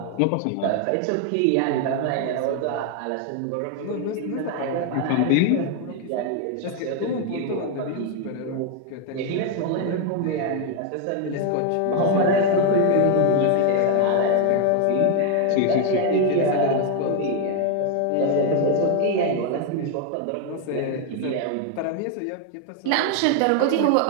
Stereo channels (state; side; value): different; both; correlation 0.01